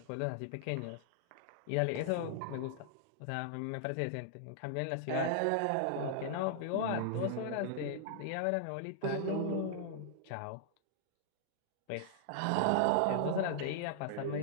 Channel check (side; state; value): both; different; correlation -0.01